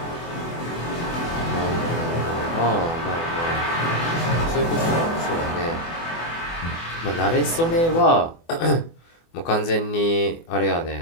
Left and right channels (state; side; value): late; right; 24 ms